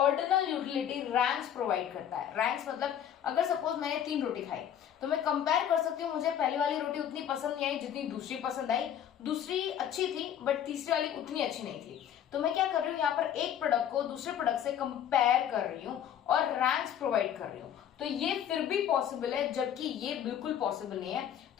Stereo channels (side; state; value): right; quieter; 9.7 dB